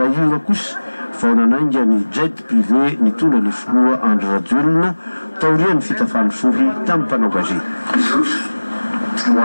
kosa vao nanainga ny jet privé nitondra ny filoha Andry Rajoelina taorian'ny fitafany sohy tamin'ny mpanao gazety. Ho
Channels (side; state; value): both; inverted; correlation -1.00